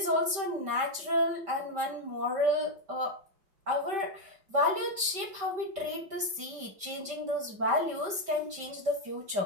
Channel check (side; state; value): left; late; 5.2 ms